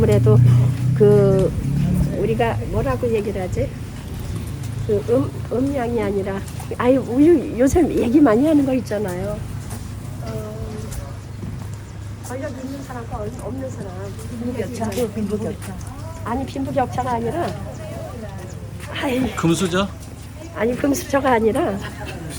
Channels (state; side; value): identical; both; correlation 1.00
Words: 그 우리가 뭐라고 얘기를 하지? 그 음양이 아니라 요즘 얘기 많이 하는 거 있잖아요. 권력 있는 사람과 없는 사람. 빈부격차. 아니 빈부격차가 아니라 금수저? 아니 금수저가 아니라